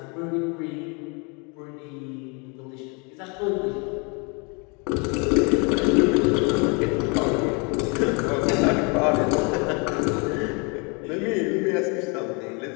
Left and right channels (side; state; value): right; quieter; 32.3 dB